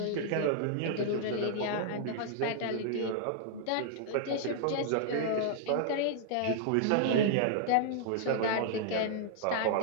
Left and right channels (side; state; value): both; different; correlation -0.01